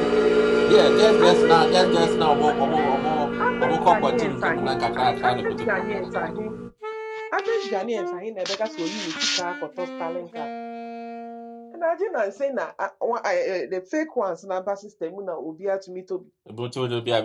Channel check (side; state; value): both; identical; correlation 1.00